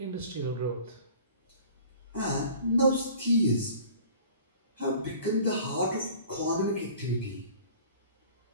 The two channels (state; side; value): inverted; both; correlation -0.46